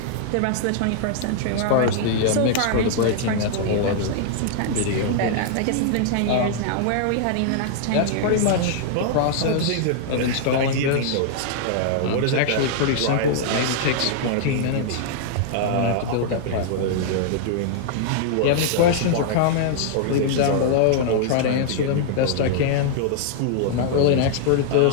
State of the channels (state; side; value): different; both; correlation -0.01